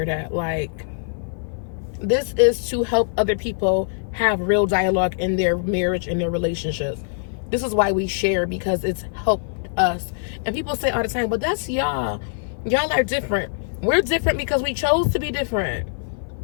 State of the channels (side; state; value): right; silent; 55 dB below the other